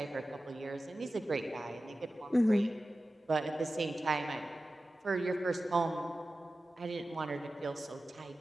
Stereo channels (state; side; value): normal; both; correlation 0.94